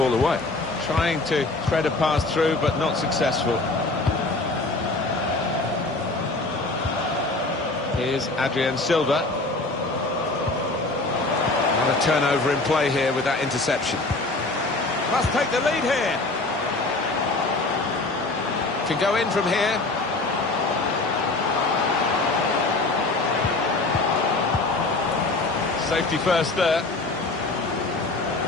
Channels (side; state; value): right; quieter; 3.2 dB